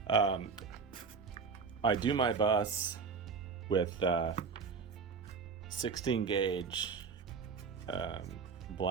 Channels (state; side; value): quieter; left; 5.4 dB